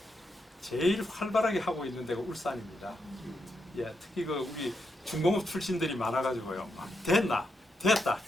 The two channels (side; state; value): both; normal; correlation 0.83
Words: 제일 활발하게 하고 있는 데가 울산입니다. 예, 특히 그 우리 중공업 출신들이 많아가지고요. 됐다.